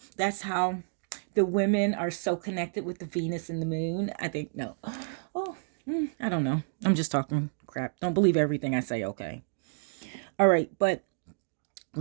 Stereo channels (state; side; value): silent; left; digital silence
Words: That's how the women are so connected with the Venus and the moon. I think, no. Oh, I don't know. I'm just talking crap. Don't believe everything I say, okay? All right, but